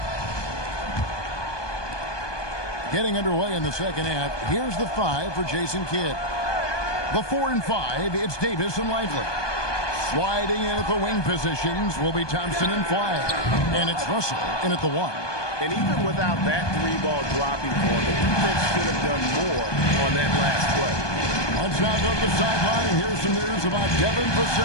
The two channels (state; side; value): late; right; 1.2 ms